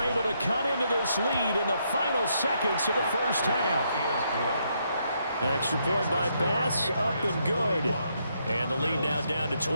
able to cut into this lead in the final seconds of the first half. Extra point by Bass, up and good. And the lead now down to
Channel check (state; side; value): inverted; both; correlation -0.76